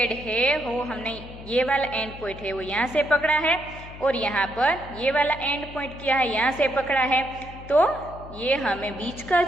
है वो हमने ये वाला एंड पॉइंट है वो यहाँ से पकड़ा है और यहाँ पर ये वाला एंड पॉइंट क्या है यहाँ से पकड़ा है, तो ये हमें बीच का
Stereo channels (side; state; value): left; noise; hum, 15 dB below the sound